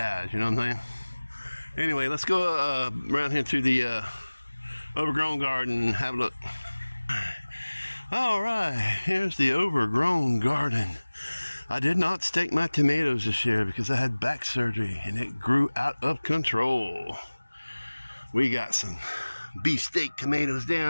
you know what I'm saying? Anyway, let's go around here to the overgrown garden and have a look. Alright, here's the overgrown garden. I did not stake my tomatoes this year because I had back surgery and it grew out of control. We got some beefsteak tomatoes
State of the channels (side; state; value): both; inverted; correlation -1.00